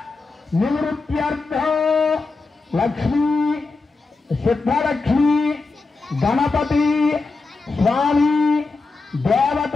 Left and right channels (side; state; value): right; quieter; 3.8 dB